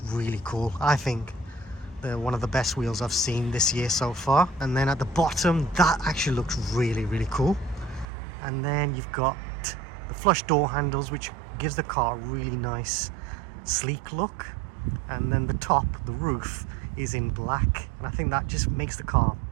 really cool. I think they're one of the best wheels I've seen this year so far. And then at the bottom, that actually looks really, really cool. And then you've got the flush door handles, which gives the car a really nice sleek look. And then the top, the roof, is in black, and I think that just makes the car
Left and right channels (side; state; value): left; drops out; at 8.1 s